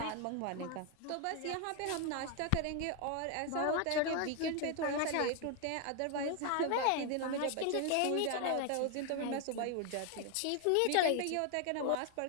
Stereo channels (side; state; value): both; different; correlation 0.01